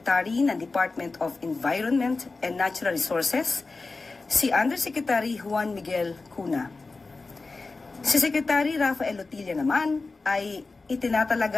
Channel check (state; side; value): quieter; right; 3.8 dB